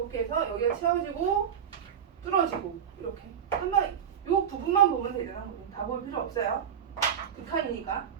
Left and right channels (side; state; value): left; quieter; 8.3 dB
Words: 해서 여기가 채워지고 뚫어지고 이렇게. 한번 요 부분만 보면 되잖아. 다 볼 필요 없어요. 극한이니까.